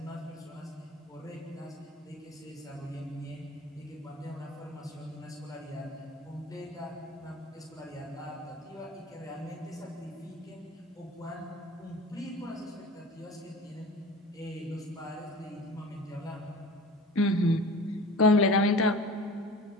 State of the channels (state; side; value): normal; both; correlation 0.39